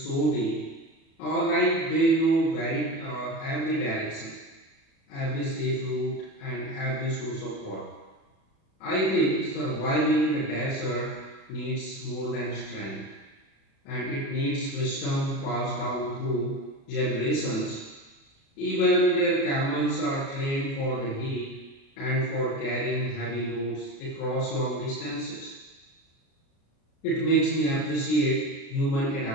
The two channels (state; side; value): late; right; 37 ms